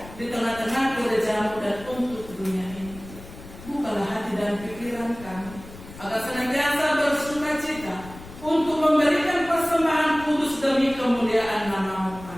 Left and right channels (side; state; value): left; noise; rumble, 17 dB below the sound